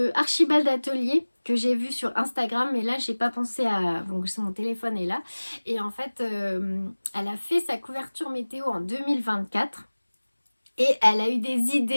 Archibald Atelier que j'ai vue sur Instagram, mais là j'ai pas pensé à... Donc mon téléphone est là. Et en fait, elle a fait sa couverture météo en 2024. Et elle a eu des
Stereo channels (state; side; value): inverted; both; correlation -1.00